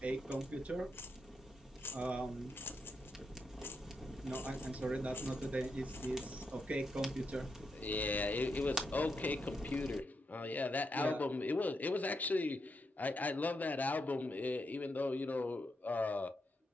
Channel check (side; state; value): both; normal; correlation 0.83